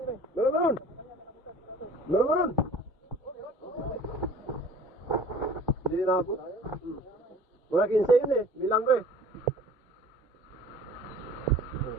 Meron. Meron. Hindi naabot. Wala 15 yun eh. Bilang ko eh.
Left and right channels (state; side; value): normal; both; correlation 0.47